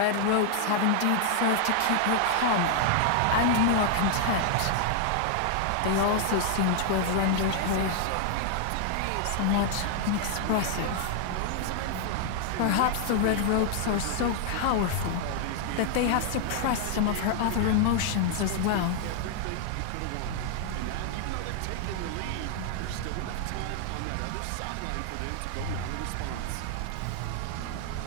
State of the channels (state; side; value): different; both; correlation 0.00